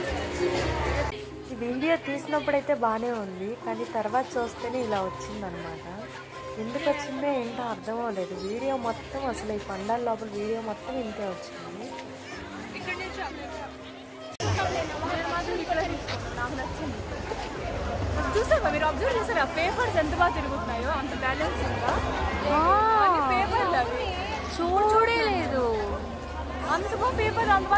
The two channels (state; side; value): identical; both; correlation 1.00